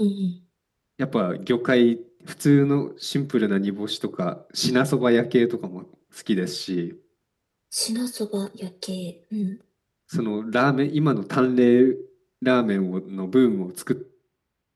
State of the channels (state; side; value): identical; both; correlation 1.00